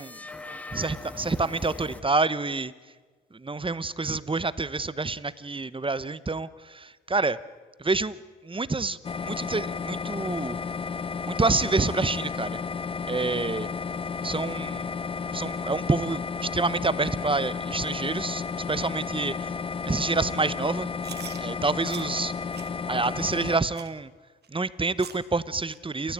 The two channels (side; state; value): both; normal; correlation 0.38